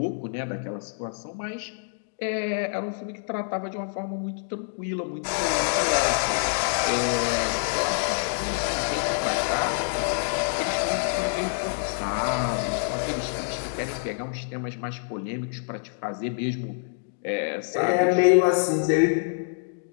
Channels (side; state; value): right; silent; digital silence